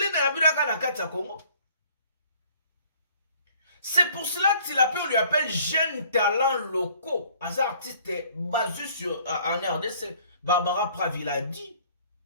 na yabila na kati ya Congo. C'est pour cela que Tilapia, on lui appelle jeune talent locaux. Un artiste basé sur en RDC. Barbara Pravila dit.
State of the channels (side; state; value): both; inverted; correlation -0.57